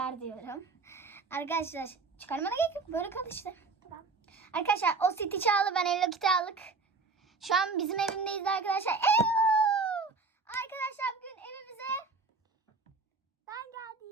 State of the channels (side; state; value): left; quieter; 4.1 dB